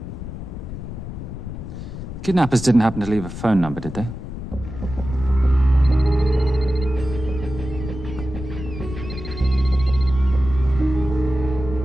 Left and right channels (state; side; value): noise; left; rumble, 9 dB below the sound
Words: Kidnappers didn't happen to leave a phone number, did they?